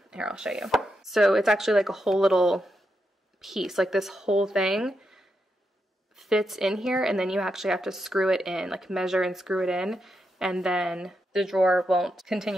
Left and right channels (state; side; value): normal; both; correlation 0.84